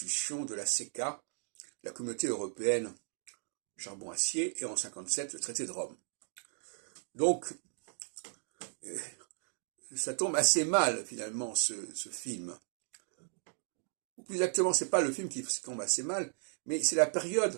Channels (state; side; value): silent; left; 54 dB below the other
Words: de la CECA, la Communauté européenne charbon-acier, et en 57, le traité de Rome. Donc, ça tombe assez mal, finalement, ce film. Ou plus exactement, c'est pas le film qui tombe assez mal, mais c'est la